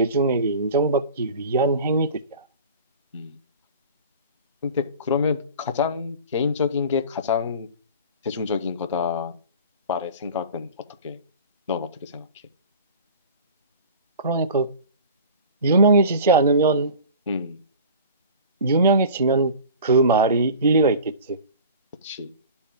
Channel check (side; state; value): both; inverted; correlation -0.39